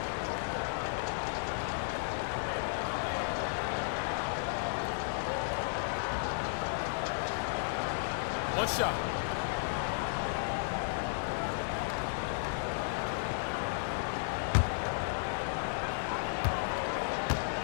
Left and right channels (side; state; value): right; silent; digital silence